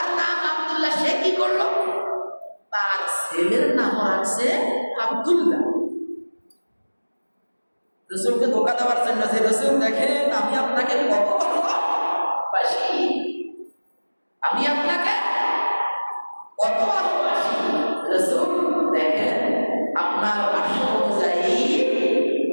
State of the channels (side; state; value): both; inverted; correlation -1.00